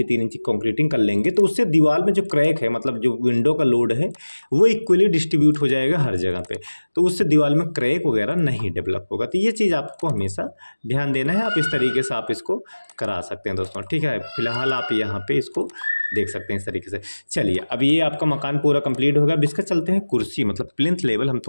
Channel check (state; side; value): inverted; both; correlation -1.00